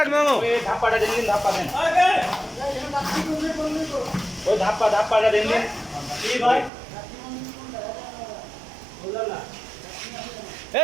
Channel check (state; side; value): drops out; left; at 6.7 s